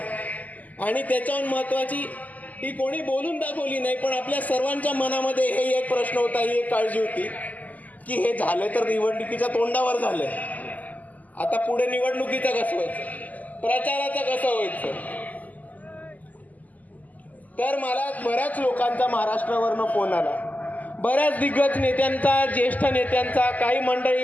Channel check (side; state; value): right; late; 0.078 ms